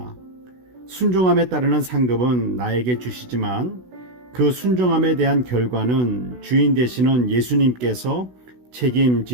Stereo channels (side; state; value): left; late; 16 ms